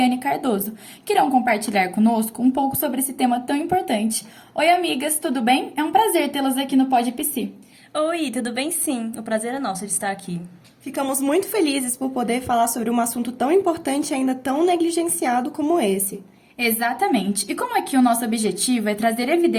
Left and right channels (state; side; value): identical; both; correlation 1.00